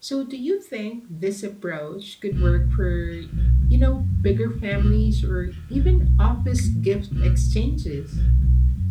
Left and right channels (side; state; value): both; identical; correlation 1.00